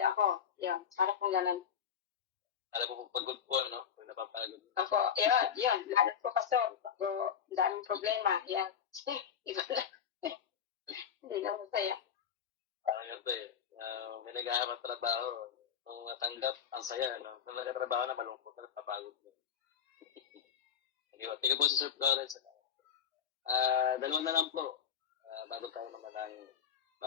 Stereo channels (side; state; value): right; quieter; 7.8 dB